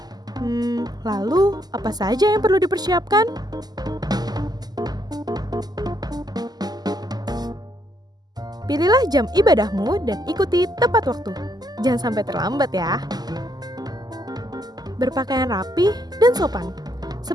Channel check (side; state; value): left; late; 0.20 ms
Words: Lalu apa saja yang perlu dipersiapkan? Pilihlah jam ibadahmu dan ikuti tepat waktu. Jangan sampai terlambat ya. Berpakaian rapi dan sopan,